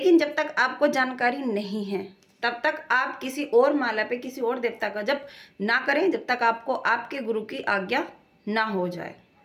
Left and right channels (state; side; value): identical; both; correlation 1.00